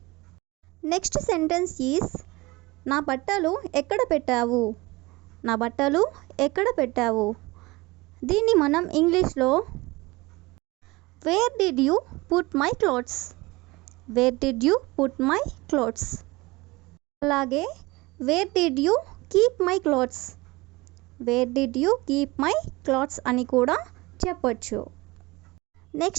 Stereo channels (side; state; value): left; quieter; 22.3 dB